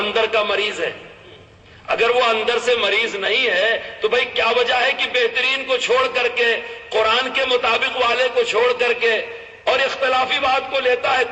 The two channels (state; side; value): identical; both; correlation 1.00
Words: کا مریض ہے. اگر وہ اندر سے مریض نہیں ہے تو بھائی کیا وجہ ہے کہ بہترین کو چھوڑ کر کے، قرآن کے مطابق والے کو چھوڑ کر کے اور اختلافی بات کو لیتا ہے؟